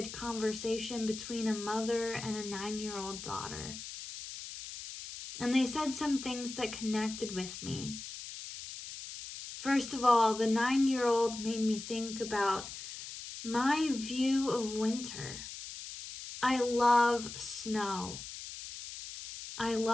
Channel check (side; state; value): left; noise; hiss, 10 dB below the sound